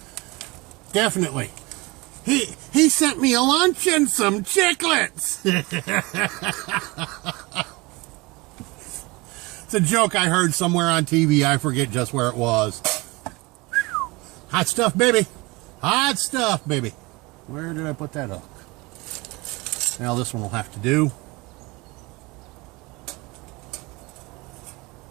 Definitely. He sent me a lunch and some chiclets. It's a joke I heard somewhere on TV. I forget just where it was. Hot stuff, baby. Hot stuff, baby. Where did I put that hook? Now this one will have to do.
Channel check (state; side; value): quieter; left; 24.3 dB